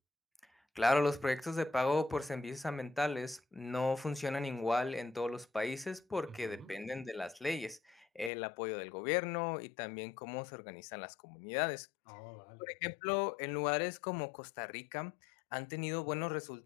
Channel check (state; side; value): drops out; right; at 8.3 s